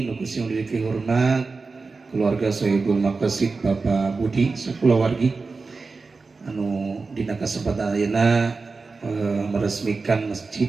nuku sing diri hormat keluarga Sohibul Maqasid Bapak Budi sakulawargi anu dina kasempatan ayeuna meresmikan masjid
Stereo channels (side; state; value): left; quieter; 4.1 dB